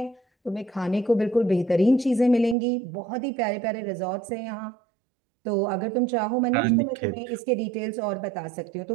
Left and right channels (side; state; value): left; drops out; at 2.6 s